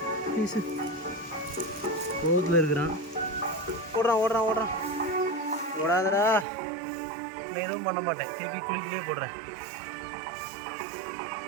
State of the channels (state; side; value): drops out; left; at 6.5 s